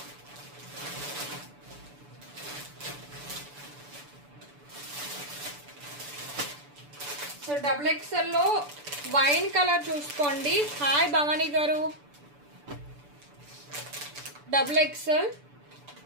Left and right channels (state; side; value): late; left; 6.9 ms